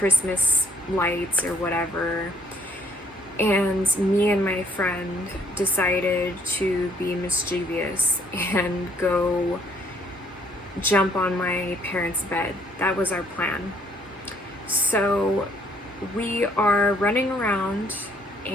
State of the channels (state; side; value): normal; both; correlation 0.64